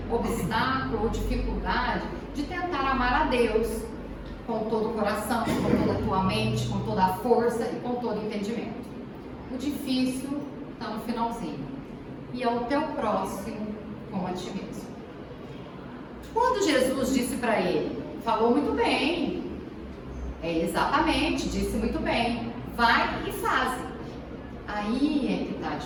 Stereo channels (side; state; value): both; identical; correlation 1.00